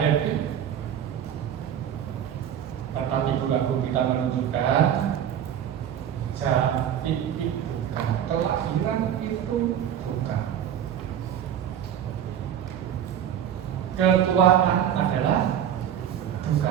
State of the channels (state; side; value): quieter; left; 9.7 dB